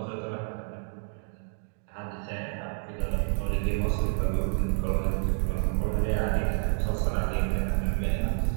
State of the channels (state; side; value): silent; left; 59 dB below the other